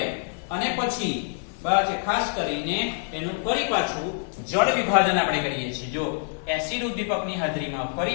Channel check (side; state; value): right; silent; 61 dB below the other